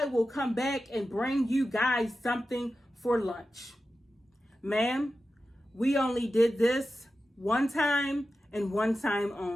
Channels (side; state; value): both; normal; correlation 0.92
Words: will come back and bring you guys something for lunch. Ma'am, we only did this one time and one time